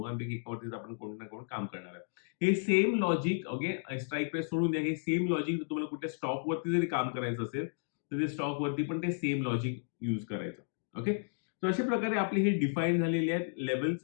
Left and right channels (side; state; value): right; silent; digital silence